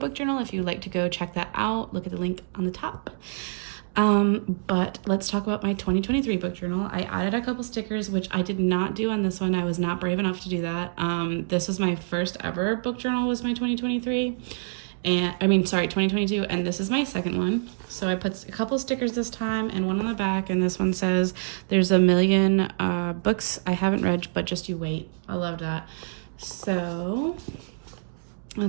journal. If you'd like to go check that out, look at the link on the top. But let's talk about my 2023 book journal. I added a couple stickers, which I did not do on this one. I was not brave enough to do that. This was my first ever book journal, was my 2023. And 2022, and this is my second one. So I put a couple stickers this time and one on the back, and this one says there's a million books I haven't read, but just you wait. I love that. So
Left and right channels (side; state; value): left; silent; digital silence